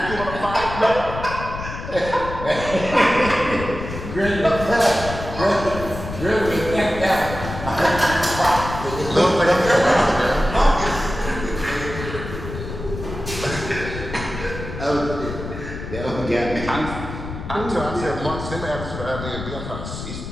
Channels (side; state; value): left; noise; rumble, 8 dB below the sound